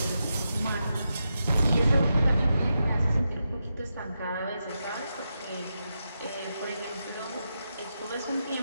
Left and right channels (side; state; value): both; inverted; correlation -0.87